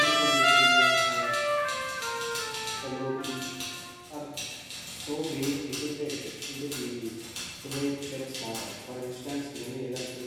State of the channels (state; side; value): identical; both; correlation 1.00